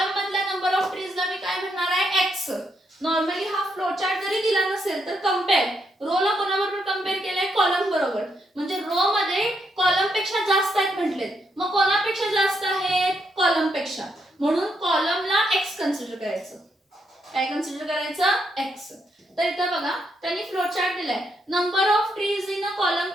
मधल्या नंबर ऑफ ट्रीजला मी काय म्हणणार आहे एक्स. नॉर्मली हा फ्लो चार्ट जरी दिला नसेल तर कंपेअर रो ला कोणाबरोबर कंपेअर केलाय कॉलम बरोबर, म्हणजे रो मध्ये कॉलम पेक्षा जास्त आहेत म्हटलेत, मग कोणापेक्षा जास्त आहेत कॉलम पेक्षा, म्हणून कॉलमला एक्स कन्सिडर करायचं. काय कन्सिडर करायचं एक्स. तर इथं बघा त्यांनी फ्लो चार्ट दिलाय, number of trees in a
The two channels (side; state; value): both; normal; correlation 0.78